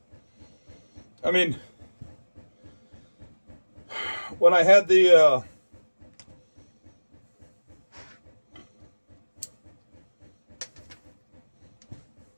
I mean, when I had the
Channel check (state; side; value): inverted; both; correlation -1.00